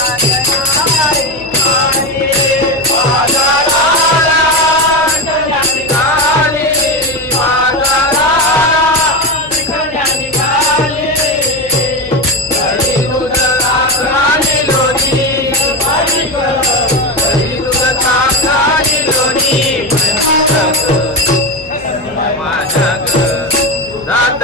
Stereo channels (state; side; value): noise; left; hum, 22 dB below the sound